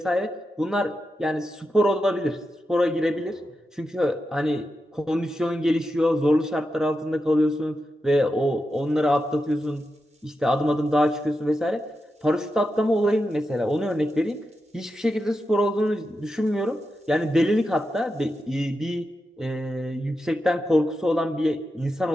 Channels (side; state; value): both; normal; correlation 0.88